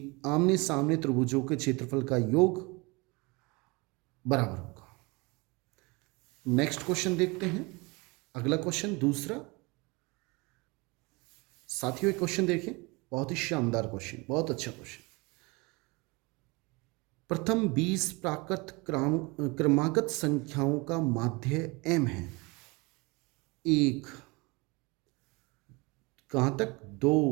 आमने सामने त्रिभुजों के क्षेत्रफल का योग बराबर होगा। नेक्स्ट क्वेश्चन देखते हैं। अगला क्वेश्चन दूसरा। साथियों एक क्वेश्चन देखें, बहुत ही शानदार क्वेश्चन, बहुत अच्छा क्वेश्चन। प्रथम 20 प्राकृत क्रमागत संख्याओं का माध्य m है। 1 कहाँ तक 2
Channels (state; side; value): quieter; left; 26.4 dB